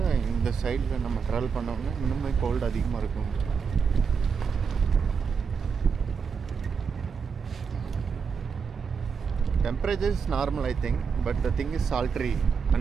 இந்த சைடில் நம்ம travel பண்ணோம்னா இன்னுமே gold அதிகமாக இருக்கும். Temperature is normal I think, but the thing is sultry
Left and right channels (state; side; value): quieter; left; 5.9 dB